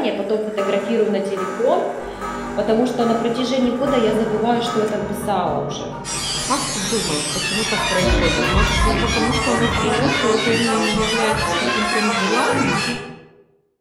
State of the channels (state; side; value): identical; both; correlation 1.00